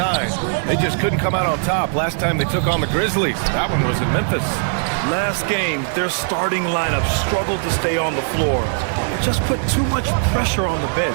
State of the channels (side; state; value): left; silent; 65 dB below the other